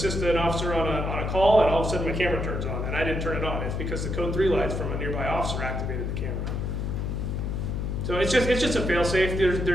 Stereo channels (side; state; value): left; noise; hum, 2 dB below the sound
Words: an officer on a call, and all of a sudden my camera turns on, and I didn't turn it on. It's because the Code 3 lights from a nearby officer activated the camera. So it's just a fail-safe.